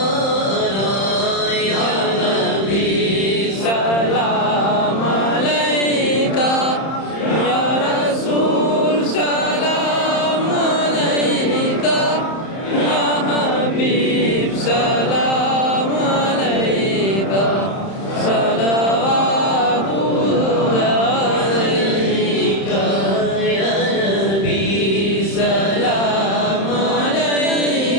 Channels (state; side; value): late; right; 31 ms